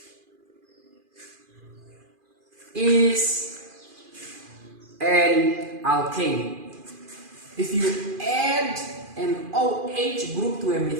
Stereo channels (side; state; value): left; late; 2.4 ms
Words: is an alkane. If you add an OH group to a